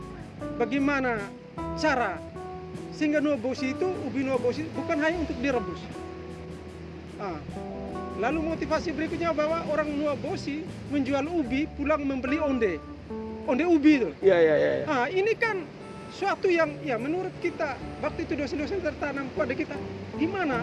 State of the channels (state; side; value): identical; both; correlation 1.00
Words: Bagaimana cara sehingga nuobosi itu, ubi nuobosi bukan hanya untuk direbus. Lalu motivasi berikutnya bahwa orang nuobosi menjual ubi pulang membeli onde ubi itu. Iya. Ini kan suatu yang ya menurut kita waktu itu dosen-dosen tertanam pada kita,